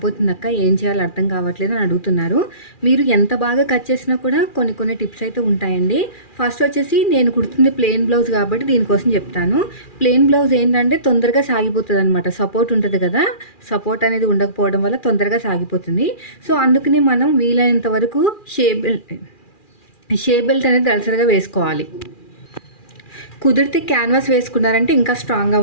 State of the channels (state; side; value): late; right; 2.4 ms